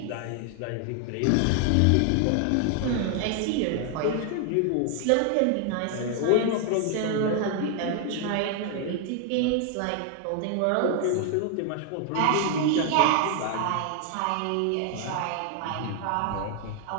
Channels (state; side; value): different; both; correlation 0.00